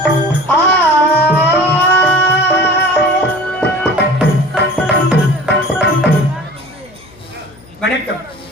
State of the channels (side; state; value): left; noise; hum, 25 dB below the sound